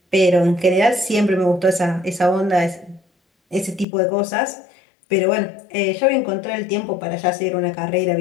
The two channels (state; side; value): drops out; right; at 3.9 s